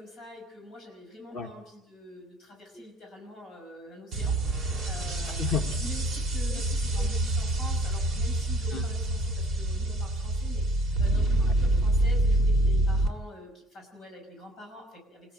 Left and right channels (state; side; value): normal; both; correlation 0.54